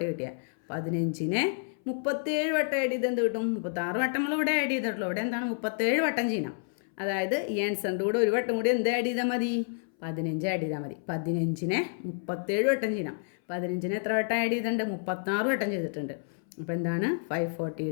കിട്ടിയത്. 15നെ 37 വട്ടം ആഡ് ചെയ്ത് എന്ത് കിട്ടും? 36 വട്ടം നമ്മൾ ഇവിടെ ആഡ് ചെയ്തിട്ടുള്ളൂ. ഇവിടെ എന്താണ് 37 വട്ടം ചെയ്യണം. അതായത് ഈ ആൻസറിൻ്റെ കൂടെ ഒരു വട്ടം കൂടി എന്ത് ആഡ് ചെയ്താൽ മതി? 15 ആഡ് ചെയ്താൽ മതി. 15നെ 37 വട്ടം ചെയ്യണം. 15നെ എത്ര വട്ടം ആഡ് ചെയ്തിട്ടുണ്ട്? 36 വട്ടം ചെയ്തിട്ടുണ്ട്. അപ്പോൾ എന്താണ്?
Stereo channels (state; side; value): silent; right; 58 dB below the other